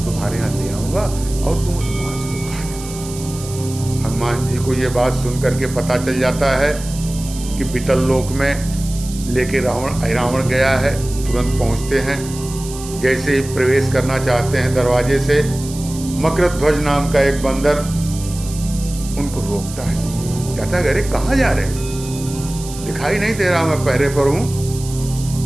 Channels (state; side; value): noise; right; hiss, 13 dB below the sound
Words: तुम्हारे यहाँ ले आऊंगा और तुम उस मांस को खा लेना। हनुमान जी को ये बात सुनकर के पता चल जाता है कि बीतल लोक में लेके रावण गया है। तुरंत पहुंचते हैं। जैसे ही प्रवेश करना चाहते हैं दरवाजे से, मकरध्वज नाम का एक बंदर उनको रोकता है। कहता है अरे कहाँ जा रहे हैं, दिखाई नहीं दे रहा, मैं पहरे पर हूं।